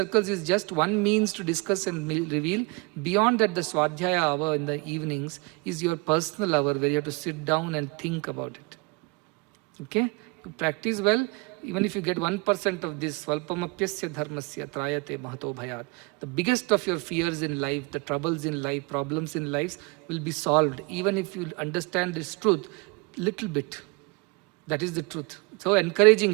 is just one means to discuss and reveal. Beyond that, the Swadhyaya hour in the evenings is your personal hour where you have to sit down and think about it. Okay? You practice well. Even if you get 1% of this, Svalpamapyasya dharmasya trayate mahato bhayat. The biggest of your fears in life, the troubles in life, problems in life will be solved. Even if you understand this truth, little bit. That is the truth. So encouraging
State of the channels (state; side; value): quieter; left; 27.4 dB